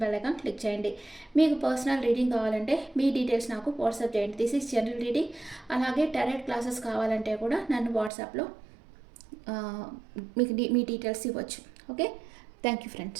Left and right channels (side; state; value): left; drops out; at 8.1 s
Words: బెల్ ఐకాన్ క్లిక్ చేయండి. మీకు పర్సనల్ రీడింగ్ కావాలంటే మీ డీటెయిల్స్ నాకు వాట్సాప్ చేయండి. This is general reading. అలాగే డైరెక్ట్ క్లాసెస్ కావాలంటే కూడా నన్ను వాట్సాప్లో మీకు మీ డీటెయిల్స్ ఇవ్వచ్చు. Okay, thank you